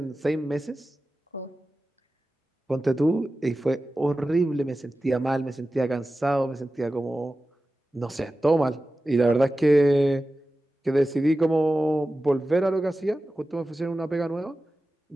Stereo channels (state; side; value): normal; both; correlation 0.94